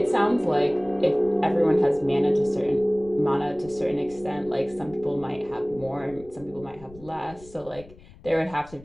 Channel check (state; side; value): noise; left; rumble, 21 dB below the sound